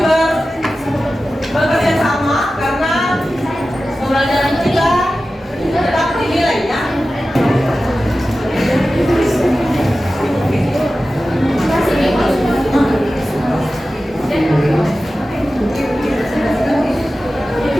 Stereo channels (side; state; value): both; normal; correlation 0.94